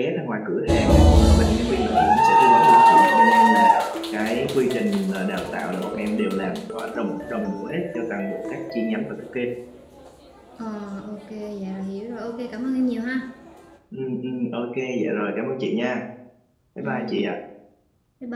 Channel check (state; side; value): identical; both; correlation 1.00